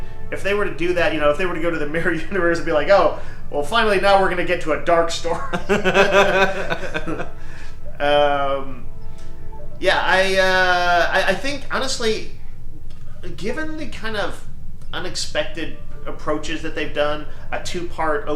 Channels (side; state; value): both; identical; correlation 1.00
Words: if they were to do that, if they were to go to the mirror universe and be like, oh, well, finally now we're going to get to a dark story. I think, honestly, given the kind of unexpected approaches that they've done, a 2-part